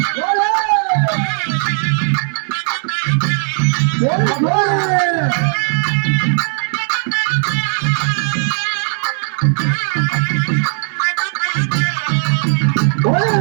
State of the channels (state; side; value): silent; left; 69 dB below the other